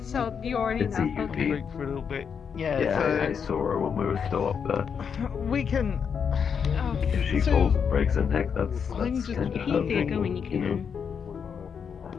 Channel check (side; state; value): right; quieter; 6.8 dB